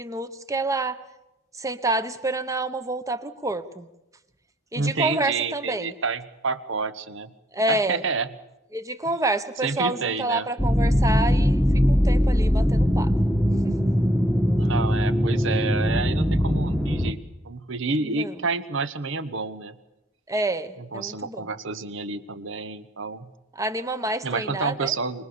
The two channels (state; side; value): normal; both; correlation 0.65